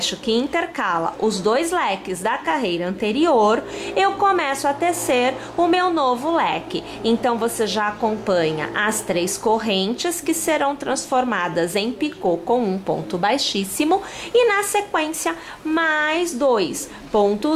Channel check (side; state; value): both; identical; correlation 1.00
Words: que intercala os 2 leques da carreira anterior, eu começo a tecer o meu novo leque. Então, você já acompanha as 3 correntes que serão transformadas em picô com um ponto baixíssimo e na sequência mais 2